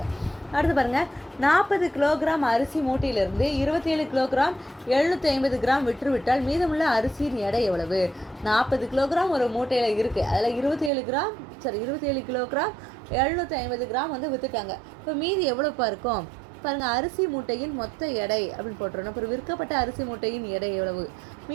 அடுத்து பாருங்கள், 40 கிலோகிராம் அரிசி மூட்டையிலிருந்து 27 கிலோகிராம் 750 கிராம் விற்றுவிட்டால் மீதமுள்ள அரிசியின் எடை எவ்வளவு? 40 கிலோகிராம் ஒரு மூட்டையில் இருக்குது, அதில் 27 கிலோகிராம் 750 கிராம் வந்து விற்றுட்டாங்க. இப்போ மீதி எவ்வளோப்பா இருக்கும் பாருங்கள், அரிசி மூட்டையின் மொத்த எடை அப்படின்னு போட்டுறணும். அப்புறம் விற்கப்பட்ட அரிசி மூட்டையின் எடை எவ்வளவு?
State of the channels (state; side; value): drops out; left; at 10.9 s